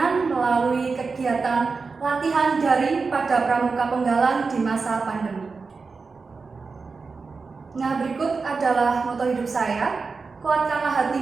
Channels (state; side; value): quieter; left; 4.5 dB